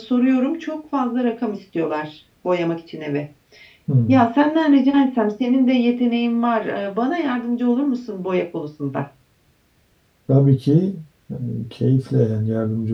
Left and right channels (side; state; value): both; identical; correlation 1.00